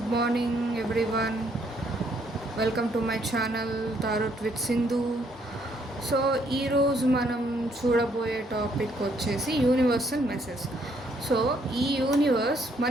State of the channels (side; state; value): both; normal; correlation 0.69